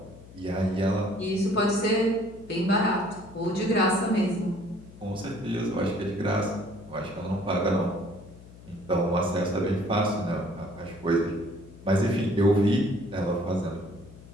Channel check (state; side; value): noise; left; hum, 19 dB below the sound